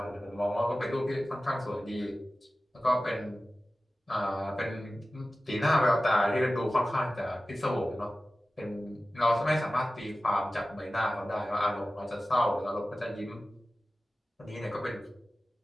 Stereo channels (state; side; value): normal; both; correlation 0.95